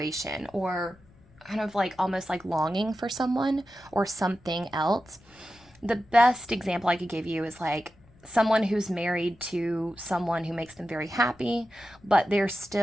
or kind of like almost like longing for someone or something else. The best example I could give you is like someone who's married to someone who makes them very happy, but they're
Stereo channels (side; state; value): left; noise; rumble, 28 dB below the sound